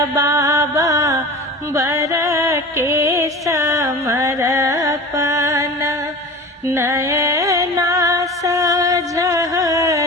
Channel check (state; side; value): normal; both; correlation 0.35